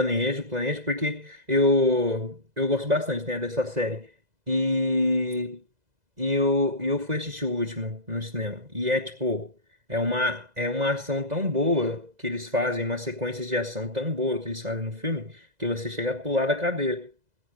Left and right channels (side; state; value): left; late; 2.0 ms